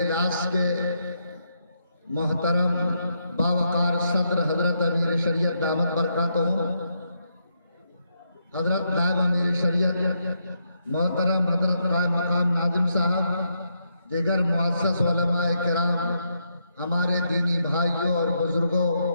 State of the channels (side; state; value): both; inverted; correlation -0.79